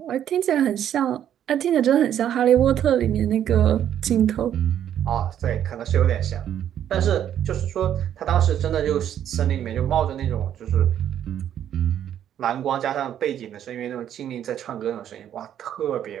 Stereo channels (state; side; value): quieter; left; 10.3 dB